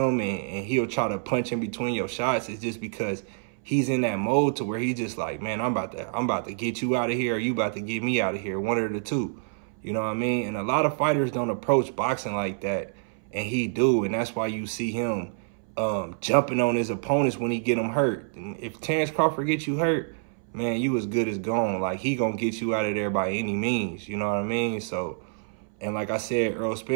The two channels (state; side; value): silent; left; 60 dB below the other